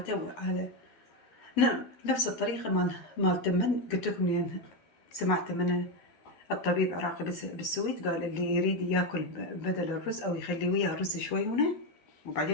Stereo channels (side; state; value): right; late; 12 ms